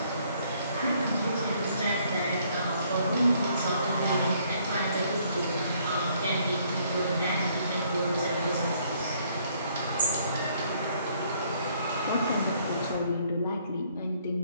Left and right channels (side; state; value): both; inverted; correlation -0.65